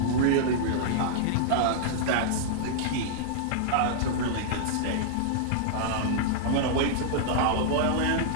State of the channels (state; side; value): different; both; correlation -0.02